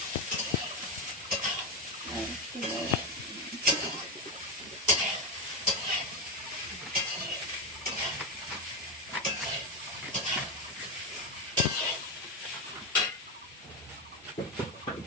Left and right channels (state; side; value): normal; both; correlation 0.10